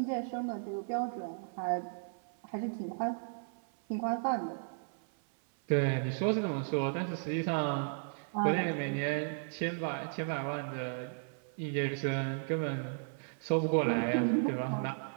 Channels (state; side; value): silent; left; 55 dB below the other